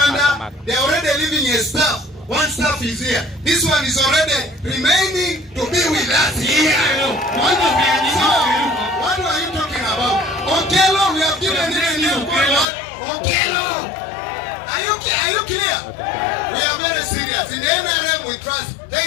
They are already leaving a staff. One staff is here. This one is already remaining to be with us here. What are you talking about? Okelo, we have given him a new contract. Okelo! Are you clear? We are very serious. In the NRM we trust.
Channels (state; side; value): drops out; right; at 12.7 s